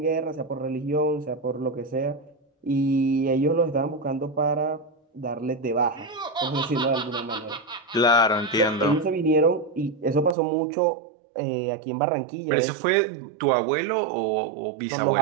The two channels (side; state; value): left; drops out; at 10.4 s